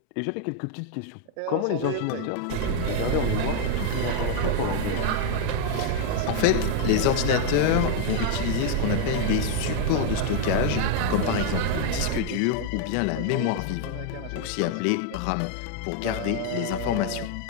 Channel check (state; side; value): different; both; correlation 0.00